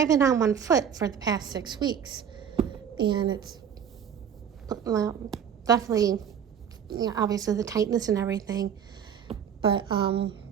been on one foot for the past 6 weeks, and it's definitely, obviously the tightness and everything. But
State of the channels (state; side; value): quieter; left; 8.2 dB